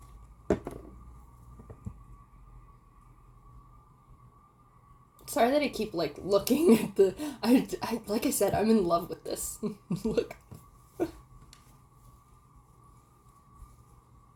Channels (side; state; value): both; identical; correlation 1.00